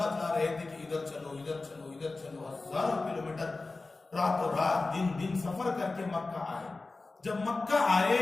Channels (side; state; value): right; quieter; 3.5 dB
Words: رہے تھے کہ ادھر چلو ادھر چلو ادھر چلو. ہزاروں کلومیٹر راتوں رات دن دن سفر کر کے مکہ آئے. جب مکہ آئے